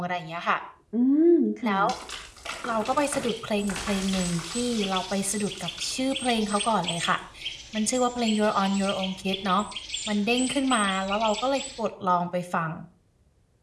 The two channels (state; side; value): identical; both; correlation 1.00